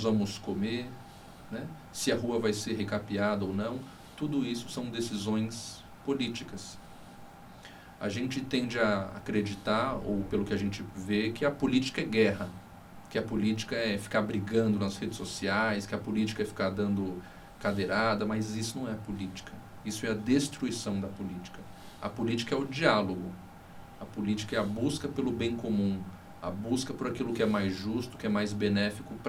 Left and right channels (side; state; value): both; identical; correlation 1.00